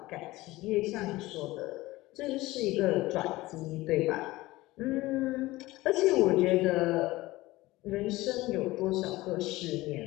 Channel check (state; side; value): quieter; right; 18.9 dB